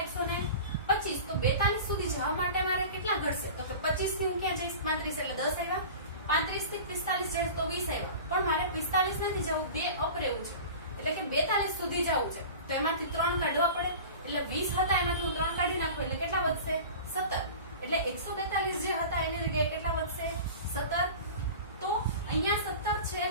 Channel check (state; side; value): inverted; both; correlation -0.36